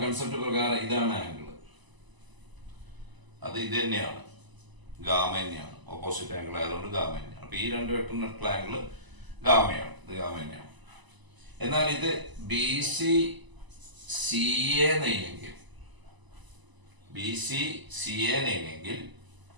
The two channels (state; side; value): late; left; 1.0 ms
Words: കൺസെപ്റ്റ് പ്രകാരം ഇതാണ് ആംഗിൾ. അത് ഇത് തന്നെയാണ്, ഗാമ തന്നെയാണ്. ഓപ്പോസിറ്റ് ആംഗിൾ ആയതുകൊണ്ട് ഗാമ തന്നെയാണ്. അപ്പൊ ഈ രണ്ട് വെക്ടറിനുള്ള ആംഗിൾ ഗാമയാണ്, ഇത് ഗാമ തന്നെയാണ്. എന്നാൽ ഇത് BC CA നെയ്യെങ്കിൽ, BC CA നെയ്യെങ്കിൽ